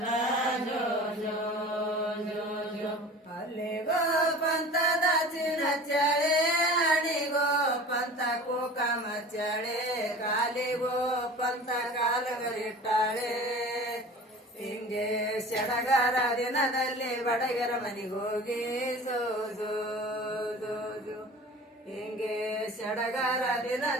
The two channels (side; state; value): both; normal; correlation 0.40